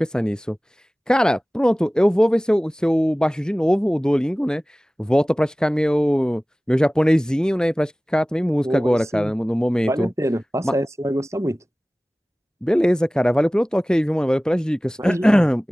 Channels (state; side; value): normal; both; correlation 0.98